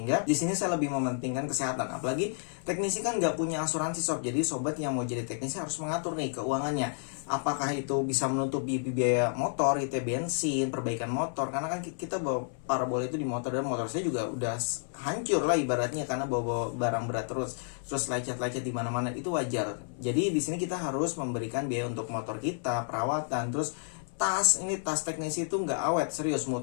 di sini saya lebih mementingkan kesehatan. Apalagi teknisi kan nggak punya asuransi sob. Jadi sobat yang mau jadi teknisi harus mengatur nih keuangannya. Apakah itu bisa menutupi biaya motor, itu bensin, perbaikan motor. Karena kan kita bawa parabola itu di motor, dan motor saya juga udah hancur lah ibaratnya karena bawa barang berat terus lecet-lecet di mana-mana, itu wajar. Jadi di sini kita harus memberikan biaya untuk motor kita, perawatan, terus tas teknisi itu nggak awet, serius. Mau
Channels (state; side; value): silent; right; 57 dB below the other